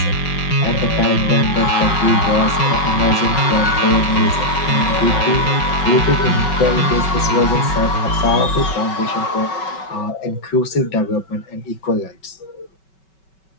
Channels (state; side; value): late; right; 5.3 ms